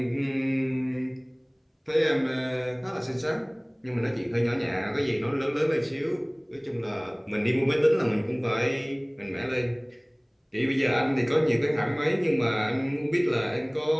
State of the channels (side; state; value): both; identical; correlation 1.00